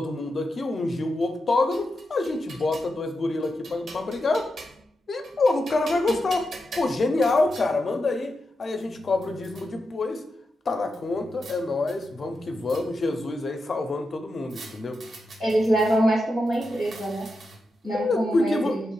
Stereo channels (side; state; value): both; normal; correlation 0.88